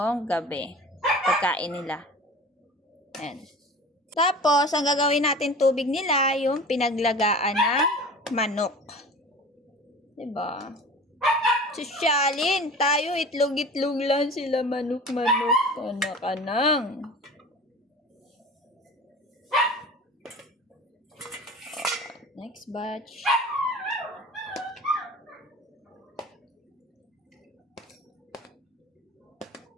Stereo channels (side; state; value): both; normal; correlation 0.39